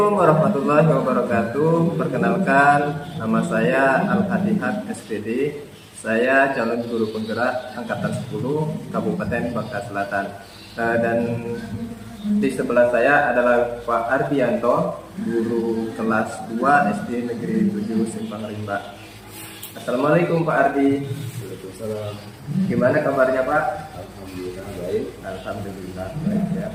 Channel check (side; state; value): both; identical; correlation 1.00